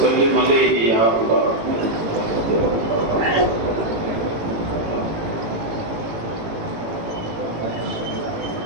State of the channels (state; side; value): late; left; 18 ms